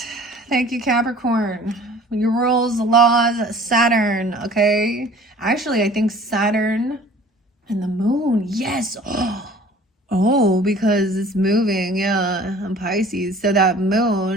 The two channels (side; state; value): both; normal; correlation 0.48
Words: Thank you, Capricorn. Your rules, laws, Saturn, okay? Actually, I think Saturn and the moon. Yes. Oh, because it's moving. Yeah, on Pisces. So that